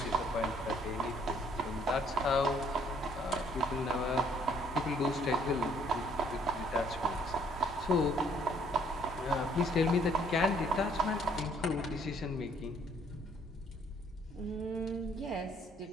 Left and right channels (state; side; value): normal; both; correlation 0.63